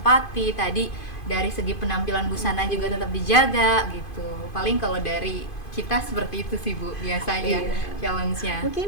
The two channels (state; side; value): late; right; 2.5 ms